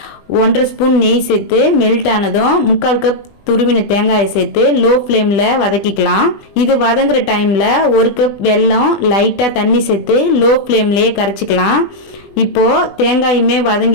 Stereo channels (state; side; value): late; right; 20 ms